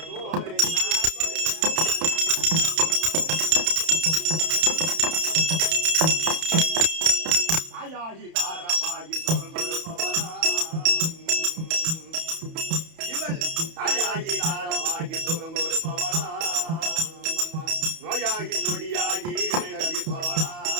தாயாகி தாரமாகி சொல் கொடுப்பவளா. இவள் தாயாகி தாரமாகி சுகம் கொடுப்பவளா. நோயாகி நொடியாகி கழிப்பவளா.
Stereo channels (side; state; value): left; late; 31 ms